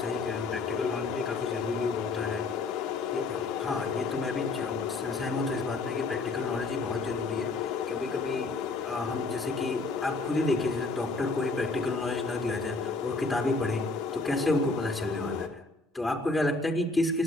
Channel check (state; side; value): quieter; right; 3.6 dB